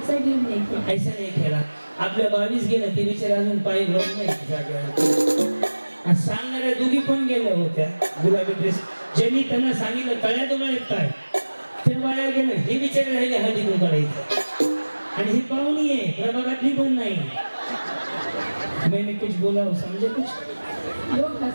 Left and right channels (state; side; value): inverted; both; correlation -1.00